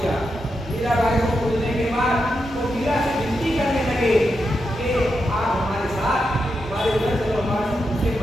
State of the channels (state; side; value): normal; both; correlation 0.86